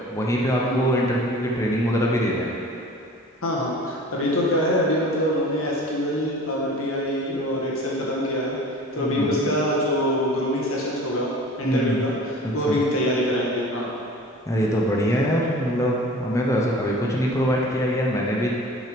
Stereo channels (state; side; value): normal; both; correlation 0.43